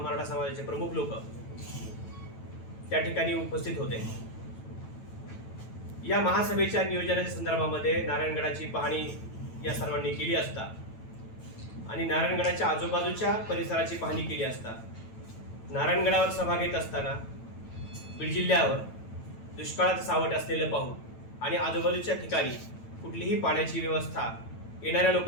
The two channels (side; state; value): right; late; 9.0 ms